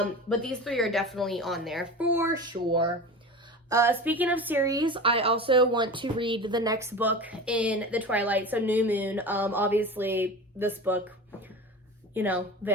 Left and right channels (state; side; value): normal; both; correlation 0.31